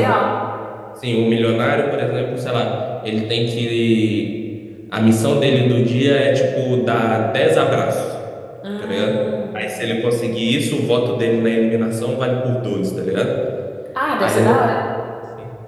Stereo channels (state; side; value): identical; both; correlation 1.00